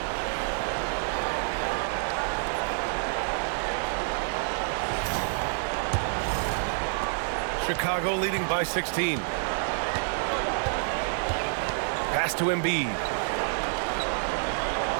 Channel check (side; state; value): left; silent; 59 dB below the other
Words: Chicago leading by 16. Pass to Embiid.